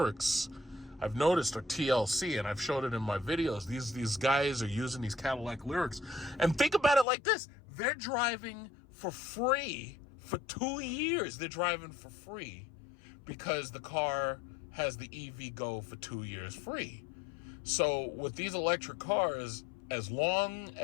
I've noticed are TLC, and I've showed it in my videos. These guys are using these Cadillac Lyrics. And think about it like this. They're driving for free for 2 years. They're driving for free because the car has the EV Go for 2 years free. So with these electric cars, as long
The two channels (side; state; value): right; drops out; at 7.1 s